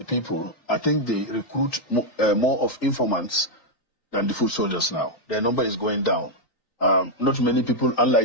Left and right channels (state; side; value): late; right; 3.9 ms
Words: people. I think they recruit more of informants than the foot soldiers now. Their number is going down. Not many people,